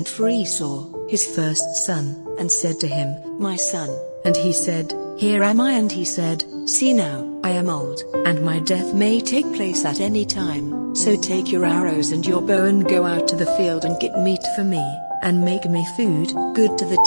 for Esau, his first son, and said to him, "My son." And he said, "Here am I." And he said, "See now, I am old, and my death may take place at any time, so take your arrows and your bow and go out to the field and get meat for me, and make me food, good to the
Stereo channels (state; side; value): inverted; both; correlation -1.00